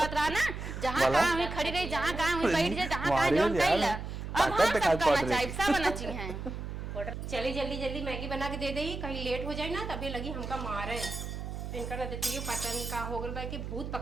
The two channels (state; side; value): noise; right; hum, 7 dB below the sound